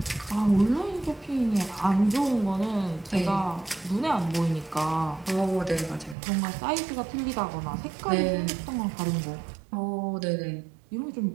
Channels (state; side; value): drops out; left; at 6.2 s